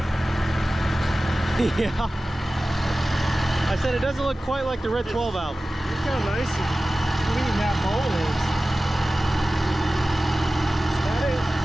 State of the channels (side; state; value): both; normal; correlation 0.96